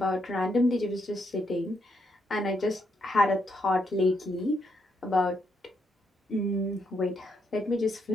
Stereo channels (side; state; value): both; normal; correlation 0.77